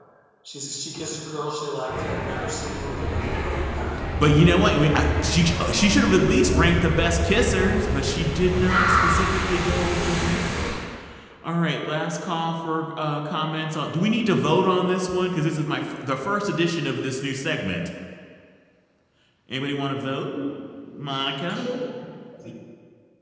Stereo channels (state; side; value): identical; both; correlation 1.00